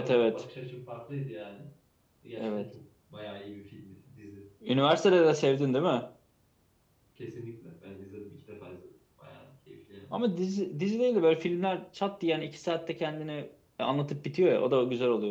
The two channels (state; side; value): identical; both; correlation 1.00